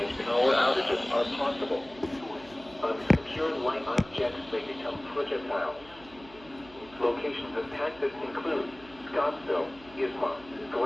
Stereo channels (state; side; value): noise; right; hum, 22 dB below the sound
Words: power outages are possible. Unsecured light objects may become projectiles. Locations impacted include Scottsville, Isma,